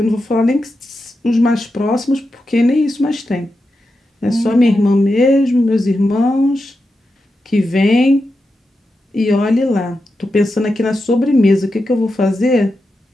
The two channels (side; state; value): both; normal; correlation 0.89